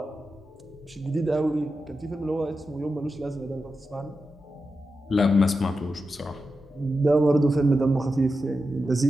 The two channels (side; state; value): both; normal; correlation 0.90